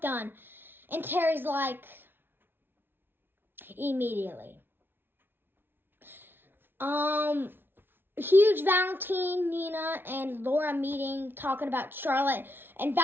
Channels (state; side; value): late; left; 0.10 ms